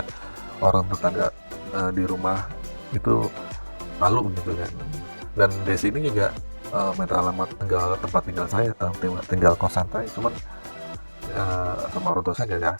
orang tetangga di rumah itu malu gitu kan. Dan desa ini juga minta alamat tempat tinggal saya, tinggal kosan saya, cuman sama orang tua saya nggak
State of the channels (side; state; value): both; inverted; correlation -1.00